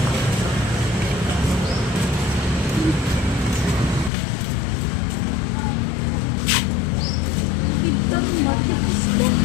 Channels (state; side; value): drops out; right; at 4.1 s